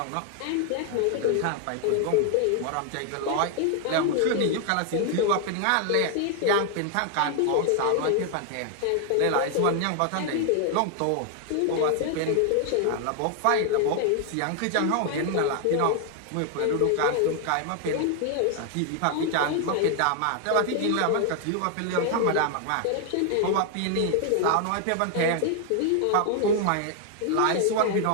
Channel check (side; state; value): both; different; correlation 0.00